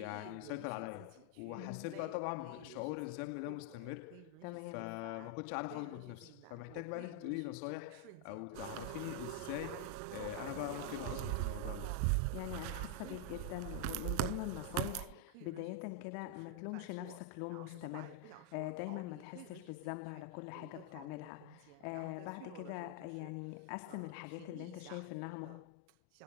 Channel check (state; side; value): different; both; correlation 0.00